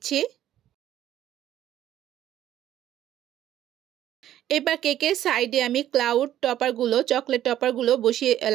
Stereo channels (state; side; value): quieter; left; 12.1 dB